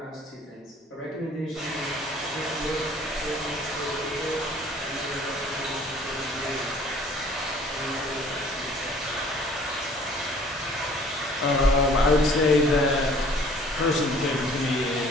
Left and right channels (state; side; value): normal; both; correlation 0.53